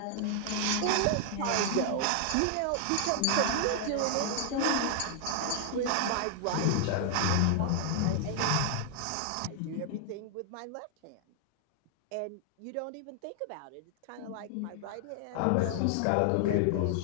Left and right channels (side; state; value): both; different; correlation 0.00